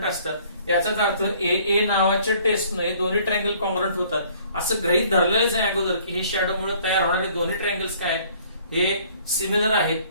असतात. याचाच अर्थ ए नावाच्या टेस्टनं हे दोन्ही ट्रायंगल कॉन्ग्रंट होतात असं गृहीत धरलेलंच आहे अगोदर की हे शॅडोमुळे तयार होणारे दोन्ही ट्रायंगल्स काय आहेत हे सिमिलर आहेत.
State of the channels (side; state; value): both; inverted; correlation -0.57